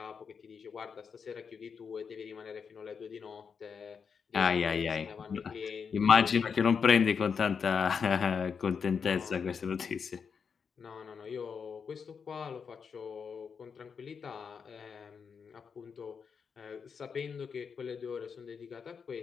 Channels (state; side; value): quieter; right; 6.2 dB